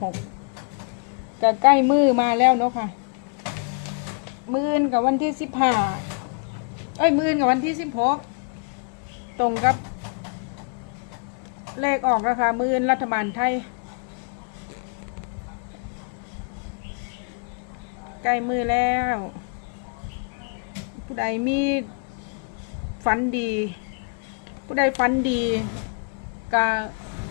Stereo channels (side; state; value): right; quieter; 38.4 dB